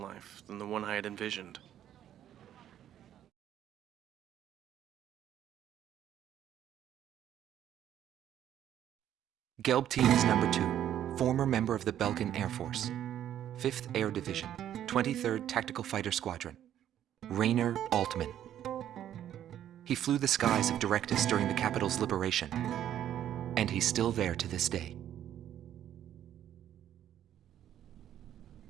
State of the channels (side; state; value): left; quieter; 11.0 dB